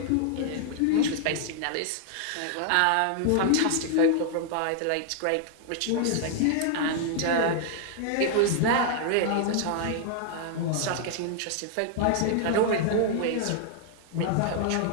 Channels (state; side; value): different; both; correlation 0.00